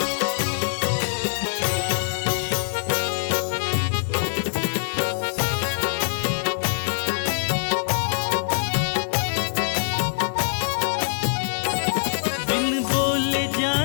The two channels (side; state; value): right; silent; digital silence